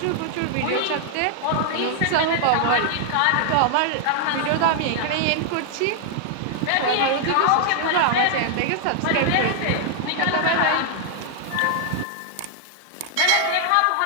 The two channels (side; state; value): both; different; correlation 0.00